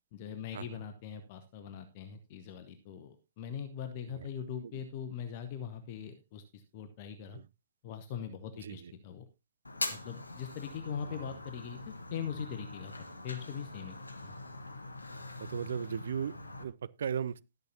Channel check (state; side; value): inverted; both; correlation -0.54